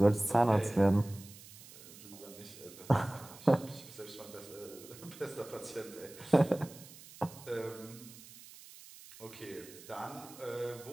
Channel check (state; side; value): noise; right; hiss, 18 dB below the sound